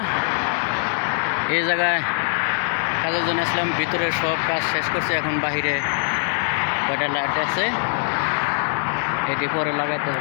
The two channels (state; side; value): silent; right; digital silence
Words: এই জায়গায় কাজের জন্য আসলাম। ভিতরে সব কাজ শেষ করছে, এখন বাহিরে কয়টা লাইট আছে এটি পরে লাগাইতে